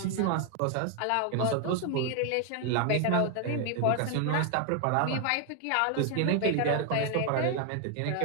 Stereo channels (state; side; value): different; both; correlation 0.00